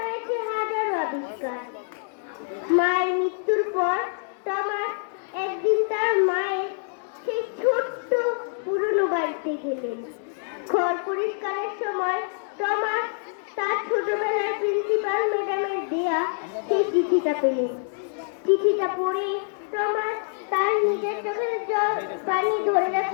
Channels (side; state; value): right; silent; digital silence